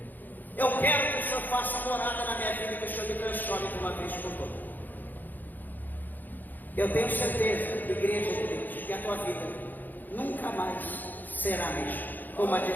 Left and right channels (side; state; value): right; late; 0.086 ms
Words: Eu quero que o Senhor faça morada na minha vida, que o Senhor me transforme de uma vez por todas. Eu tenho certeza, igreja de Deus, que a tua vida nunca mais será a mesma, como a